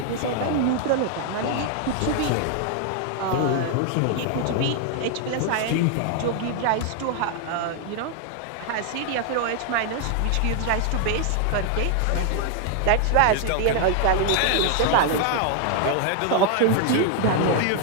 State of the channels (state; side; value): different; both; correlation 0.00